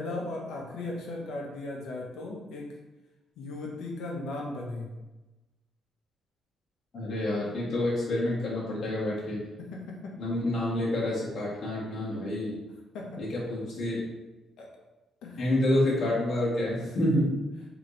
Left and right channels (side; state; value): both; normal; correlation 0.76